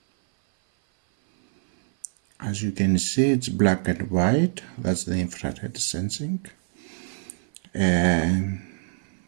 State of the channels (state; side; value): silent; left; 57 dB below the other